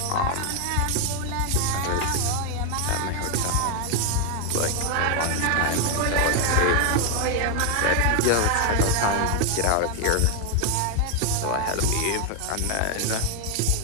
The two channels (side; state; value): both; different; correlation 0.01